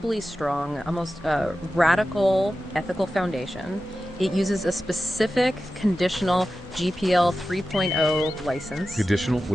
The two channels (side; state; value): both; normal; correlation 0.93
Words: strong, almost radical ethical foundation. It uses a specific conditional GPL 3.0 license. Conditional?